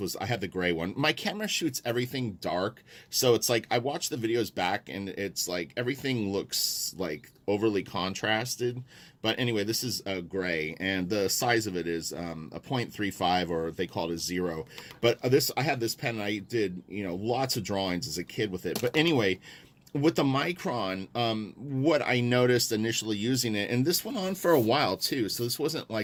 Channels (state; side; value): identical; both; correlation 1.00